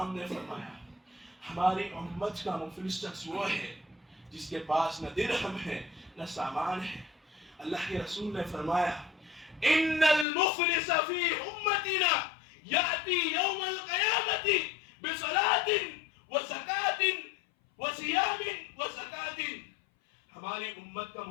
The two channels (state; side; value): drops out; right; at 10.2 s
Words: نے فرمایا، ہماری امت کا مفلس شخص وہ ہے جس کے پاس نہ درہم ہے نہ سامان ہے۔ اللہ کے رسول نے فرمایا، ان المفلس فی امتنا یاتی یوم القیامت بصلاۃ وزکاۃ وصیام وزکاۃ، ہماری امت کا